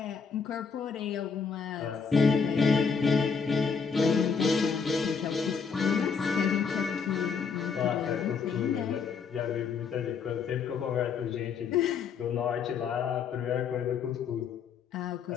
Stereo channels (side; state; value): right; quieter; 5.8 dB